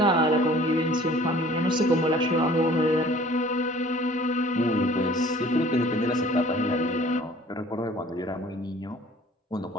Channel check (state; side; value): normal; both; correlation 0.51